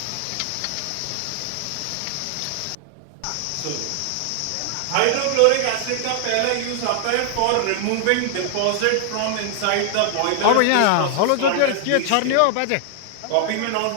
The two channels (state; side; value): different; both; correlation 0.00